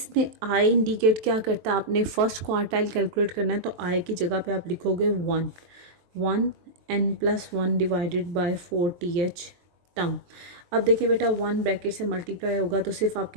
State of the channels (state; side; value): late; left; 23 ms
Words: I इंडिकेट क्या करता है? आपने फर्स्ट क्वार्टाइल कैलकुलेट करना है, तो I की जगह पे आप लिखोगे 1 n+1 divided bye 4 TH term. अब देखिए बेटा 1 ब्रैकेट से मल्टीप्लाई होगा तो सिर्फ